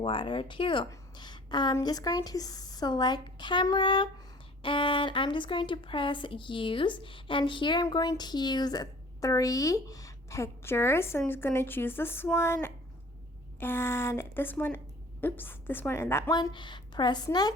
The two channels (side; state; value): both; normal; correlation 0.49